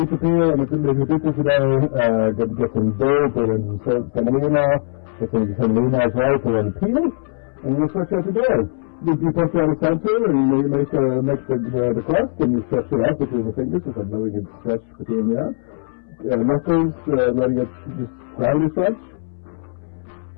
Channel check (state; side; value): silent; right; 66 dB below the other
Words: and if you did this today, get some gold, put in semolina, get some semolina as well, put in peel, and you stretch out your dough. You put it on the center, and you make the crust, and you stretch it out between the fingers, just letting it stretch between there. Knuckles, letting it just gravity stretch.